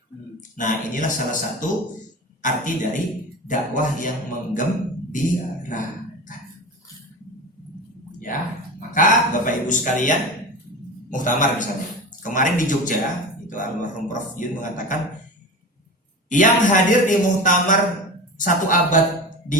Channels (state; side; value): normal; both; correlation 0.29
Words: Nah, inilah salah satu arti dari dakwah yang menggembirakan. Ya, maka Bapak Ibu sekalian, muktamar misalnya. Kemarin di Jogja, itu almarhum Prof Yun mengatakan, yang hadir di muktamar 1 abad